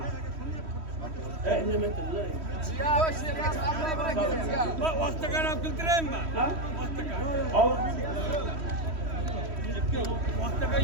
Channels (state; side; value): late; left; 3.1 ms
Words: Vaqtiga olib keltiraymi? Ha? Vaqtiga